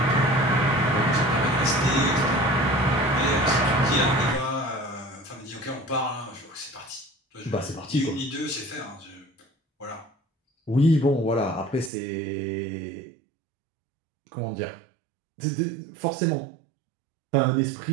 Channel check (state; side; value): drops out; left; at 11.9 s